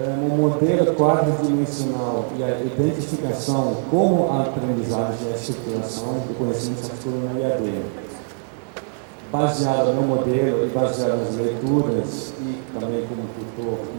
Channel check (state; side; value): silent; left; 64 dB below the other